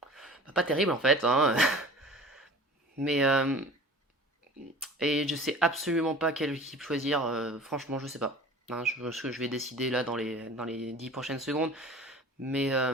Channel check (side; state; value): both; normal; correlation 0.42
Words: pas terribles en fait. Hein. Mais et je sais absolument pas quelle équipe choisir. Franchement, je sais pas. Hein, je vais décider là dans les 10 prochaines secondes. Mais,